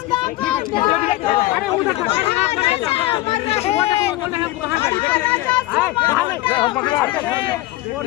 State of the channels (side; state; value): right; quieter; 17.7 dB